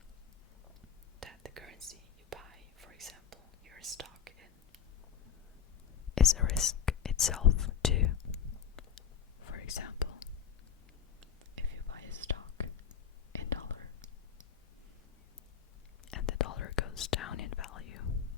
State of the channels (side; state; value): right; quieter; 8.0 dB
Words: that the currency you buy, for example, your stock in, is a risk itself too. For example, if you buy a stock in dollar and the dollar goes down in value,